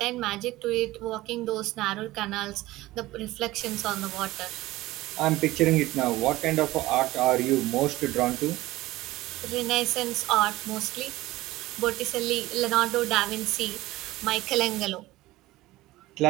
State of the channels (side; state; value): left; quieter; 18.0 dB